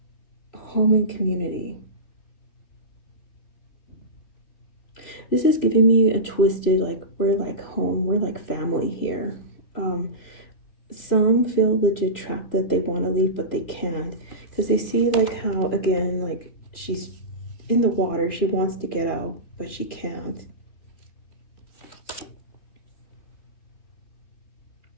home and community. This is giving me a twisted, like, we're like home, we're like family here. Some feel legit trapped that they want to leave, but they can't. Because they see, like, how, again, like, she's in the water. She wants to get out, but she can't.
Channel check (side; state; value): right; late; 3.2 ms